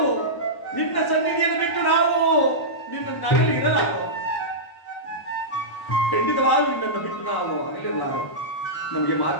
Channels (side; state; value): right; late; 1.1 ms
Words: ನಿನ್ನ ಸನ್ನಿಧಿಯನ್ನು ಬಿಟ್ಟು ನಾವು ನಿನ್ನ ನಗಲಿ ಇರಲಾರು. ಖಂಡಿತವಾಗೂ ನಿನ್ನನ್ನು ಬಿಟ್ಟು ನಾವು ಅಗಲಿರಲಾರು. ನಮಗೆ